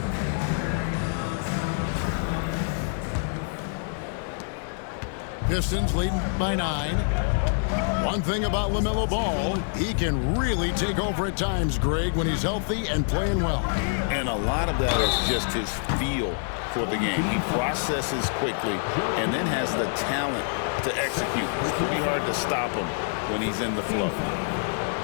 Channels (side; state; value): right; silent; 56 dB below the other